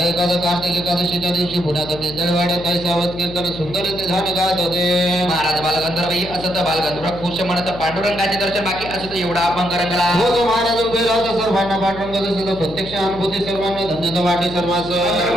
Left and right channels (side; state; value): left; noise; hum, 13 dB below the sound